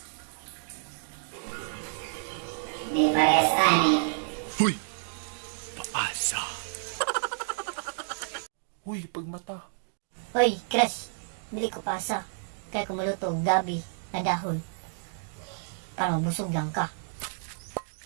Di parehas ani. Huy! Paasa! Huy, pagmata! Hoy, crush. Dili ko pasa. Kaya kumuluto og gabi na dahon. Para mabusog lang ka.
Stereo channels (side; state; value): left; silent; digital silence